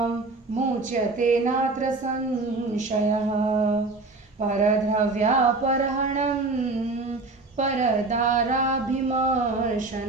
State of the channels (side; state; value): left; quieter; 3.5 dB